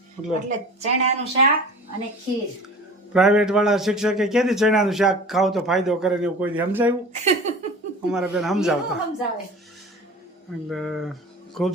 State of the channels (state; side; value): normal; both; correlation 0.39